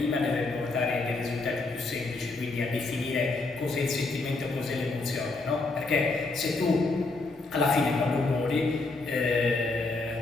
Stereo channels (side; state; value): right; quieter; 3.5 dB